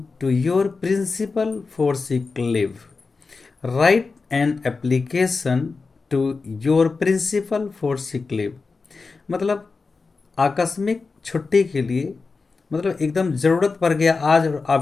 to your principal for sick leave. Write an application to your principal for sick leave। मतलब आकस्मिक छुट्टी के लिए, मतलब एकदम ज़रूरत पड़ गया आज और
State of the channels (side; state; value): right; quieter; 4.3 dB